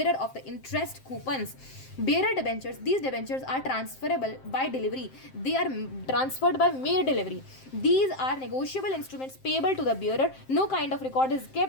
of the interest coupons. Bearer debentures, these debentures are transferable by delivery. They are transferred by mere delivery. These are negotiable instruments payable to the bearer. No kind of record is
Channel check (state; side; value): late; right; 7.6 ms